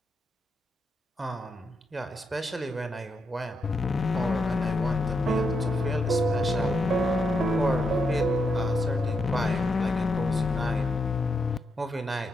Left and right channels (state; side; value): normal; both; correlation 0.82